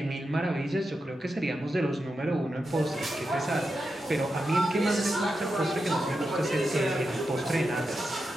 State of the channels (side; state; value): both; normal; correlation 0.88